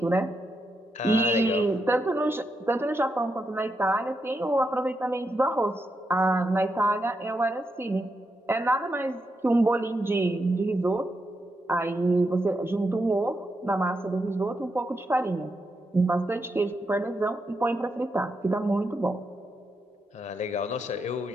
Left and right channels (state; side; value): normal; both; correlation 0.84